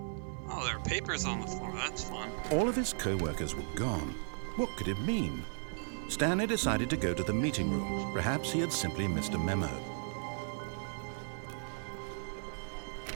Oh, there are papers on the floor. That's fun. All of his co-workers were gone. What could it mean? Stanley decided to go to the meeting room. Perhaps he had simply missed a memo.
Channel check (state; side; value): silent; left; 54 dB below the other